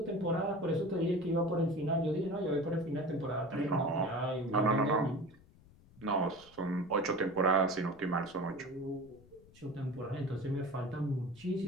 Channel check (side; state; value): left; noise; rumble, 25 dB below the sound